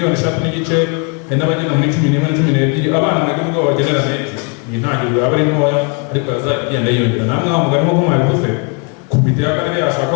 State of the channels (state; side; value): quieter; right; 34.7 dB